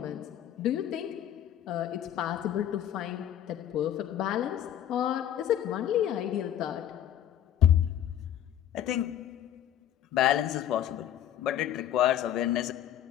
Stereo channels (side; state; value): right; quieter; 10.9 dB